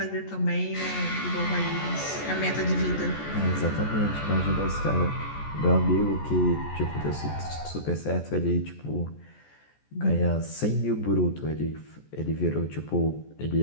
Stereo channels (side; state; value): right; late; 14 ms